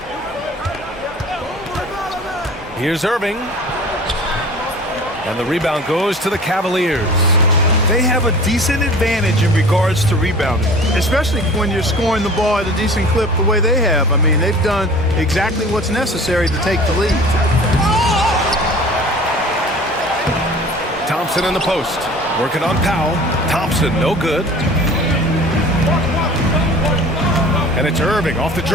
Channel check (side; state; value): both; normal; correlation 0.43